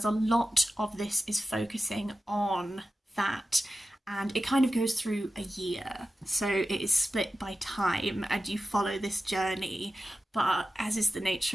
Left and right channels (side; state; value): both; normal; correlation 0.93